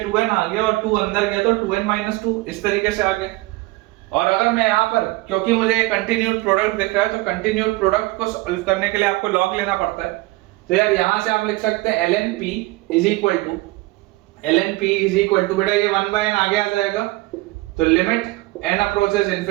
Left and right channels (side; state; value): left; quieter; 21.0 dB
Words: 2n आ गया और 2 अंदर गया तो 2n - 2 इस तरीके से आ गया। और अगर मैं यहाँ पर, क्योंकि मुझे कंटिन्यूड प्रोडक्ट दिख रहा है तो कंटिन्यूड प्रोडक्ट को सॉल्व करने के लिए आपको लॉग लेना पड़ता है। तो यार यहाँ से आप लिख सकते हैं ln p is equal to बेटा ये 1/n आगे आ जाएगा, तो limit n approaches